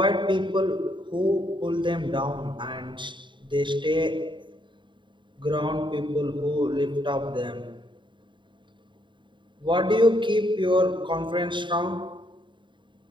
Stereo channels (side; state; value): left; late; 0.23 ms